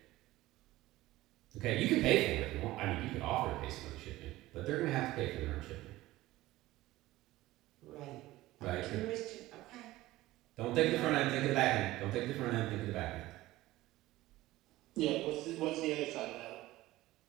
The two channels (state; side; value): quieter; left; 17.3 dB